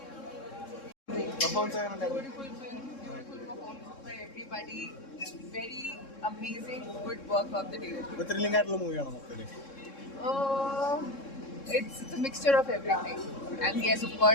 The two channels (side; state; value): right; late; 3.7 ms